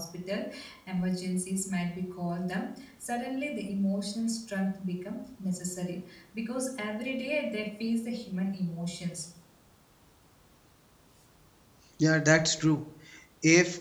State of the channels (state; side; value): identical; both; correlation 1.00